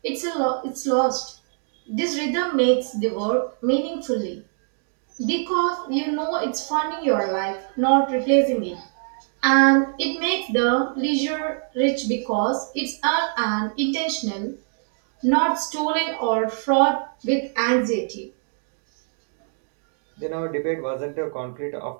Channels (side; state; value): left; silent; 58 dB below the other